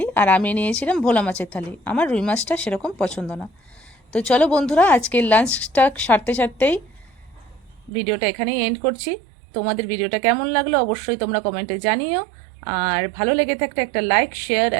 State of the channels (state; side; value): drops out; left; at 7.9 s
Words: আর আমি নিয়েছিলাম ভোলা মাছের থালি। আমার রুই মাছটা সেরকম পছন্দ না। তো চলো বন্ধুরা, আজকের লাঞ্চটা সারতে সারতেই ভিডিওটা এখানেই এন্ড করছি। তোমাদের ভিডিওটা কেমন লাগলো অবশ্যই তোমরা কমেন্টে জানিও, আর ভালো লেগে থাকলে একটা লাইক, শেয়ার